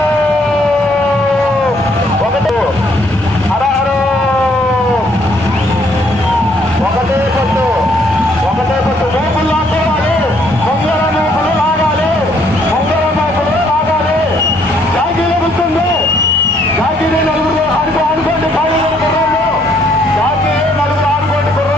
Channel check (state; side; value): normal; both; correlation 0.67